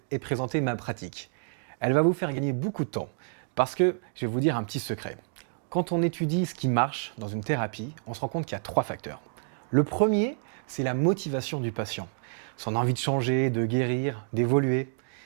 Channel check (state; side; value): silent; left; digital silence